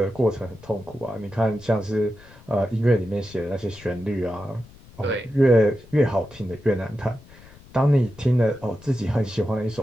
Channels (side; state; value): left; noise; rumble, 22 dB below the sound